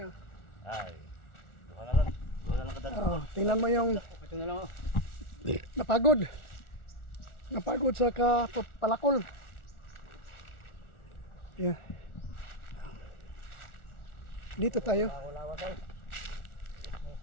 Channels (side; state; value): right; late; 1.4 ms